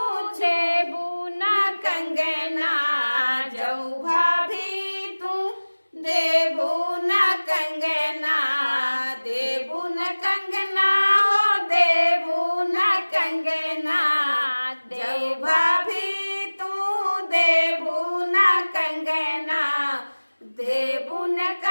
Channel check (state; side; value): inverted; both; correlation -1.00